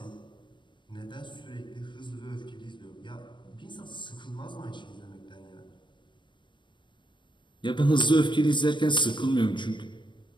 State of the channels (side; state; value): right; late; 0.23 ms